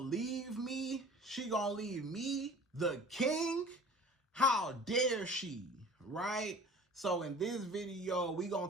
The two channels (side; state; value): both; normal; correlation 0.44